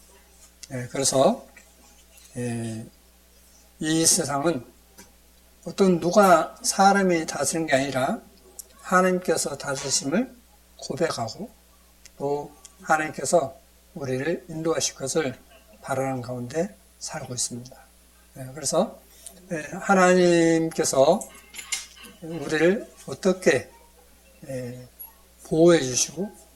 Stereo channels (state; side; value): identical; both; correlation 1.00